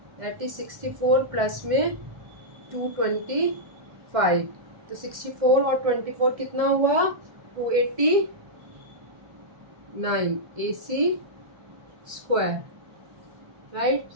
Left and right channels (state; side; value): late; left; 1.6 ms